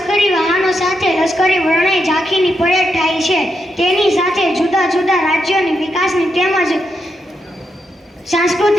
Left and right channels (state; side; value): normal; both; correlation 0.83